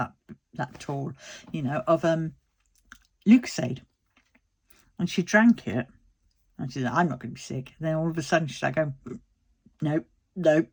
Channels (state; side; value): identical; both; correlation 1.00